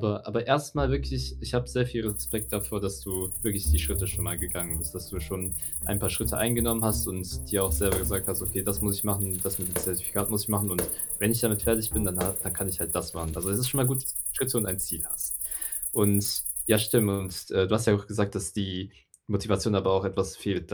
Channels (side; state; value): both; identical; correlation 1.00